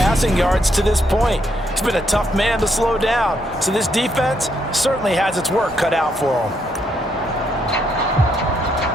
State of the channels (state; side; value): normal; both; correlation 0.75